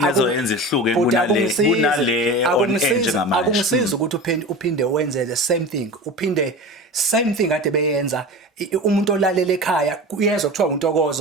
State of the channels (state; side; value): normal; both; correlation 0.31